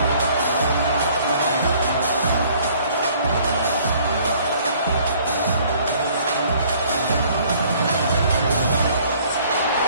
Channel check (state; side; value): inverted; both; correlation -0.57